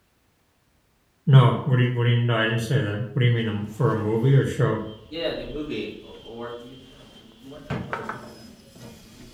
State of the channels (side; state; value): both; identical; correlation 1.00